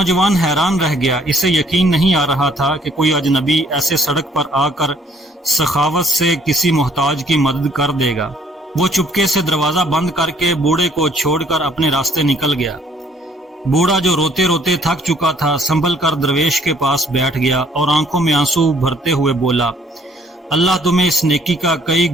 حیران رہ گیا، اسے یقین نہیں آ رہا تھا کہ کوئی اجنبی ایسے سڑک پر آ کر سخاوت سے کسی محتاج کی مدد کر دے گا۔ وہ چپکے سے دروازہ بند کر کے بوڑھے کو چھوڑ کر اپنے راستے نکل گیا۔ بوڑھا جو روتے روتے تھک چکا تھا سنبھل کر درویش کے پاس بیٹھ گیا اور آنکھوں میں آنسو بھرتے ہوئے بولا، اللہ تمہیں اس نیکی کا کئی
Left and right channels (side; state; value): both; normal; correlation 0.62